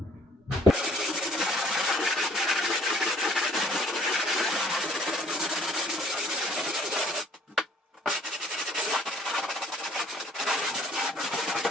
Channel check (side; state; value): both; normal; correlation 0.59